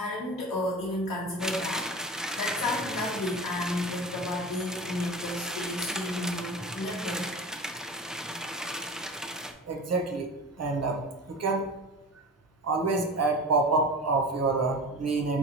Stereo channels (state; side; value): normal; both; correlation 0.34